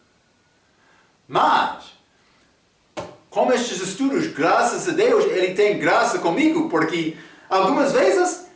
Mas, com estes estudos, graças a Deus, ele tem graça comigo, porque algumas vezes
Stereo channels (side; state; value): both; identical; correlation 1.00